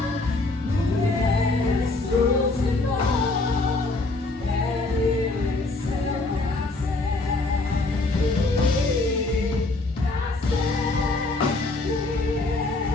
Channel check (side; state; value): right; quieter; 3.2 dB